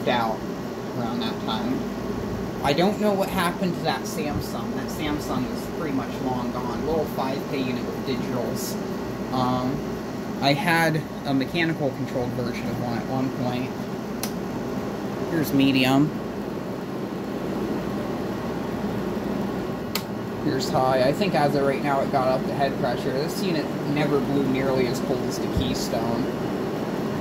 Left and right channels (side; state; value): both; identical; correlation 1.00